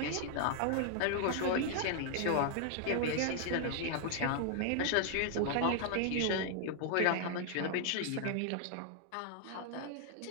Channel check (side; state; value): both; different; correlation 0.00